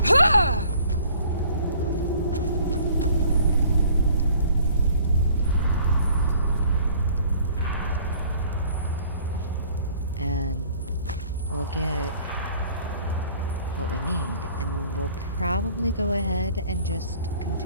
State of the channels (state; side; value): inverted; both; correlation -0.54